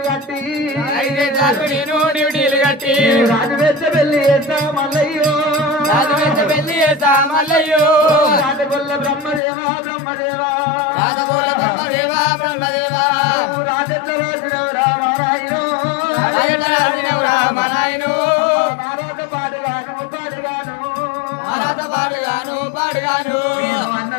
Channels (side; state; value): right; drops out; at 9.4 s